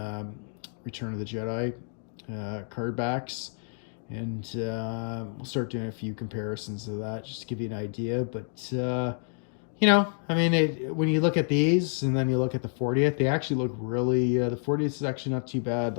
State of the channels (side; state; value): right; silent; digital silence